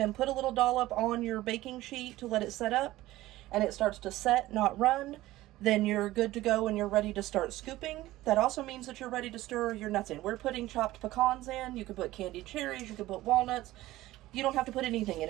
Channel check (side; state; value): left; quieter; 16.7 dB